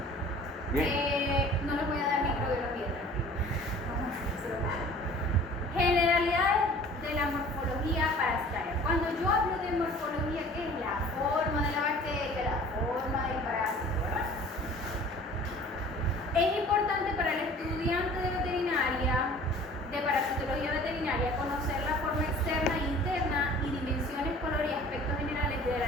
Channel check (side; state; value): both; normal; correlation 0.47